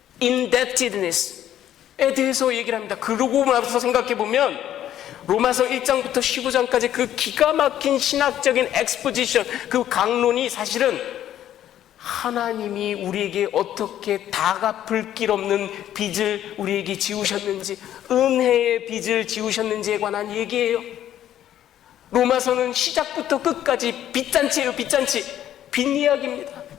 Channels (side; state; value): right; quieter; 11.5 dB